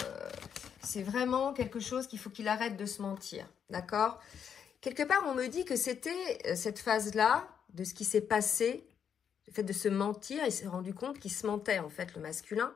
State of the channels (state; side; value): quieter; right; 7.9 dB